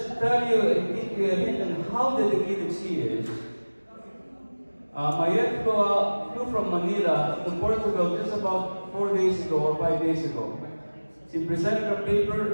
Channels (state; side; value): inverted; both; correlation -1.00